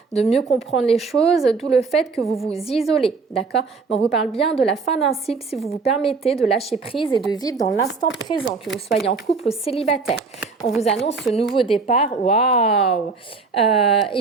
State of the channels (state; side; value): quieter; left; 4.5 dB